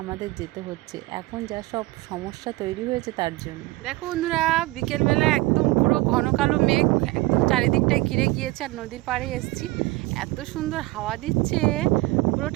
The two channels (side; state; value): left; quieter; 20.6 dB